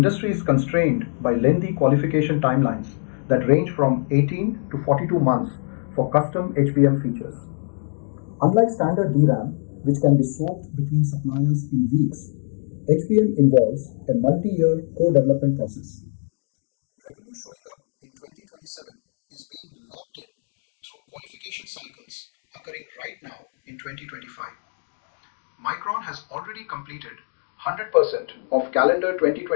is constrained by lengthy qualification timelines that range from 18 to 42 months for custom HBM features. Unlike standard DRAM, which can be swapped between suppliers in weeks, HBM involves a multi-year co-development process. Revenue showing up in 2027 is being locked in through qualification cycles occurring right now in 2025. Micron has already completed 100% of calendar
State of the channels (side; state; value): right; silent; 63 dB below the other